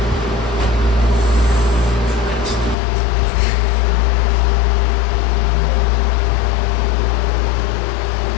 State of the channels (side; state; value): right; drops out; at 2.8 s